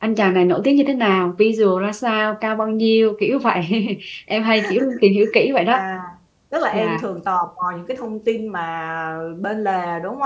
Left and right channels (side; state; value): both; identical; correlation 1.00